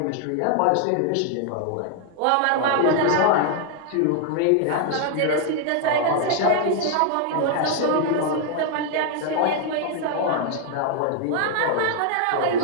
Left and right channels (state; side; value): different; both; correlation 0.00